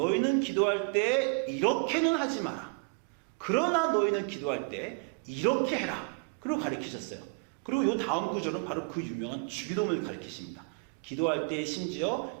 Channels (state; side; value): quieter; left; 31.9 dB